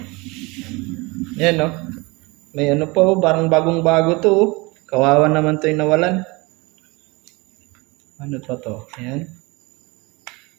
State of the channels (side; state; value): left; quieter; 25.4 dB